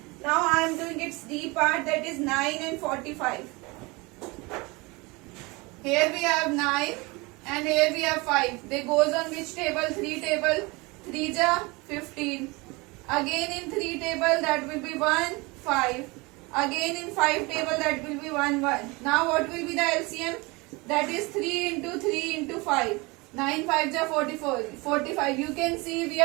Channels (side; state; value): left; quieter; 25.4 dB